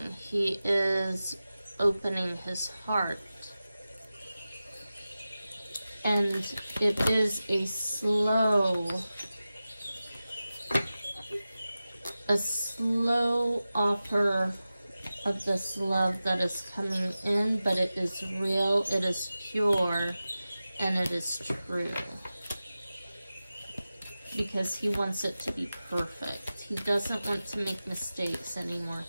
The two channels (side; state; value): both; inverted; correlation -0.95